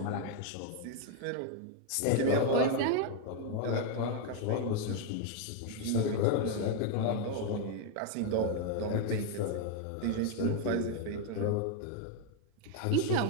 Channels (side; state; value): both; different; correlation 0.01